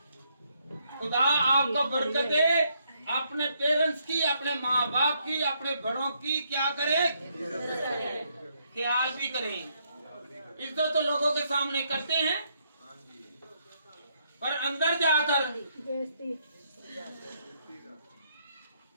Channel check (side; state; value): both; inverted; correlation -0.74